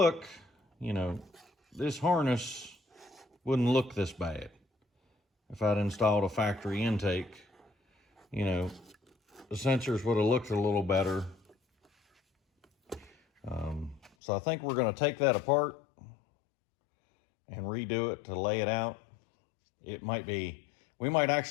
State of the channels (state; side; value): drops out; right; at 14.1 s